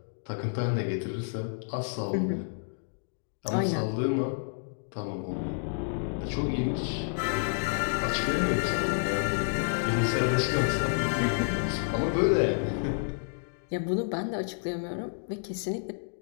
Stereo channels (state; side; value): silent; right; digital silence